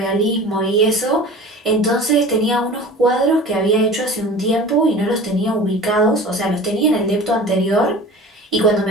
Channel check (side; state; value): both; normal; correlation 0.39